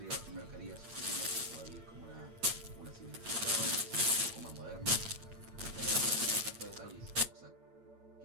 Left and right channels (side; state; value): left; late; 8.8 ms